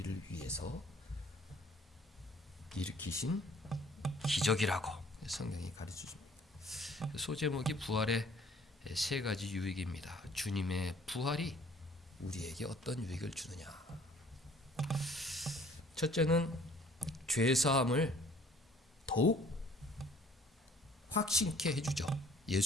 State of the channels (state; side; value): normal; both; correlation 0.57